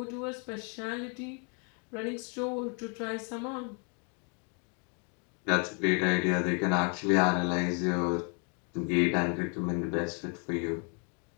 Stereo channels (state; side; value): quieter; right; 37.9 dB